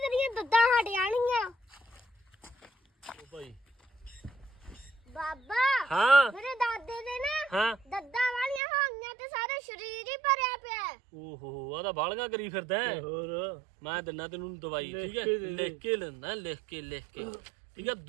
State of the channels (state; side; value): drops out; left; at 8.6 s